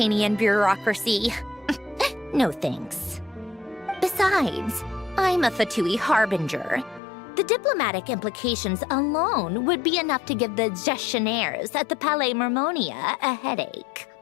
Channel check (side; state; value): right; drops out; at 7.0 s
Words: bureaucracy. No thanks. Besides, I'm a Fatui harbinger. The diplomatic implications alone would be enough to give the gestionnaires at the Palais Mermonia a headache.